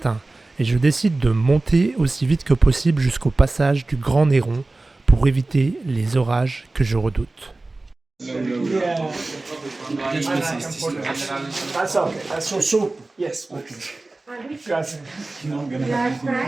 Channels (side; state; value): left; quieter; 3.1 dB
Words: et je décide de monter aussi vite que possible jusqu'au passage du Grand Néron pour éviter les orages que je redoute. That's okay. That's so soup. Yes. Okay. Grazie.